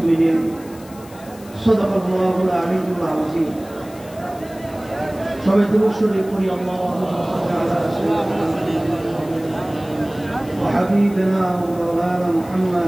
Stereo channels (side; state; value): left; noise; hiss, 22 dB below the sound